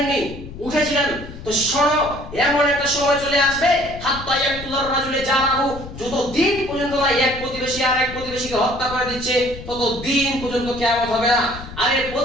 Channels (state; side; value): noise; left; rumble, 13 dB below the sound